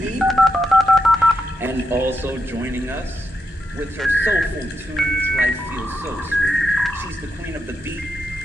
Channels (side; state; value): both; normal; correlation 0.84